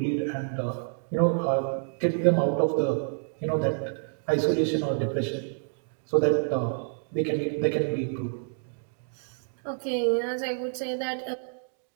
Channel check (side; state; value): left; silent; digital silence